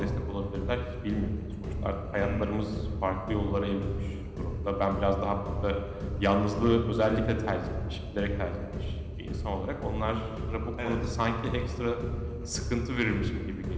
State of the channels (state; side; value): identical; both; correlation 1.00